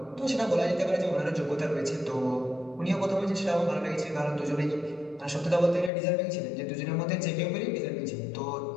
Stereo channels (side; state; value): right; drops out; at 5.9 s